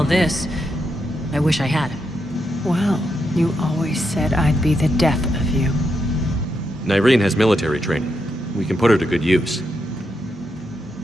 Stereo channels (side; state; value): both; normal; correlation 0.83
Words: this, I wish I had. Well, you always said I'd be the death of you. Nyreen has military training. We can put her to good use.